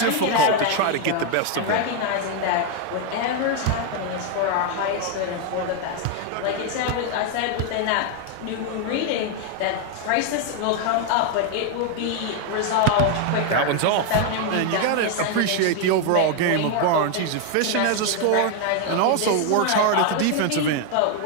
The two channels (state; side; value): different; both; correlation 0.01